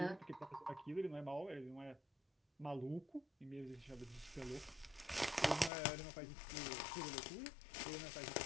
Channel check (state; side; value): drops out; right; at 5.7 s